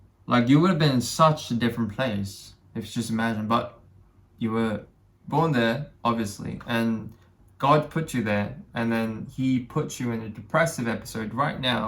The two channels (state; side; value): identical; both; correlation 1.00